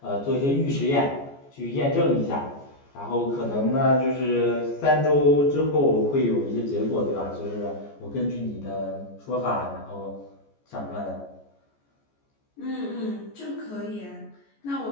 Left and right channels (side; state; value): right; late; 14 ms